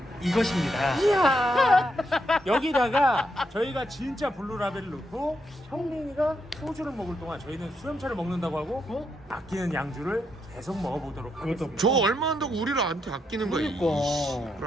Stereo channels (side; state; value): both; normal; correlation 0.80